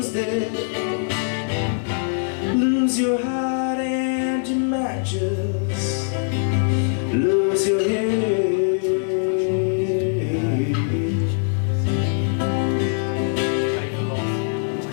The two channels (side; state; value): right; silent; digital silence